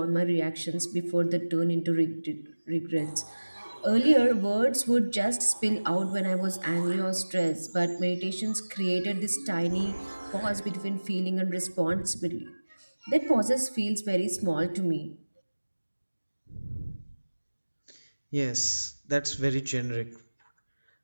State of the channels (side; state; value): both; inverted; correlation -1.00